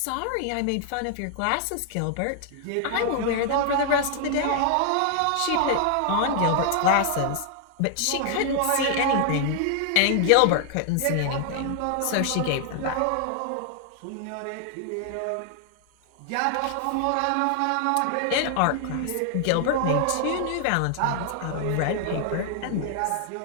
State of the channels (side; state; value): both; different; correlation 0.00